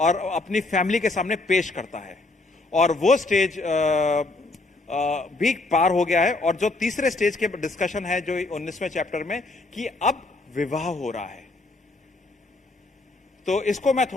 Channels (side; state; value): right; quieter; 3.2 dB